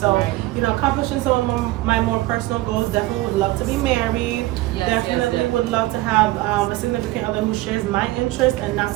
accomplishing some of my more personal goals, definitely would love to be married. Definitely would love to have a significant other who shares my interests and not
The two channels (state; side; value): quieter; left; 18.4 dB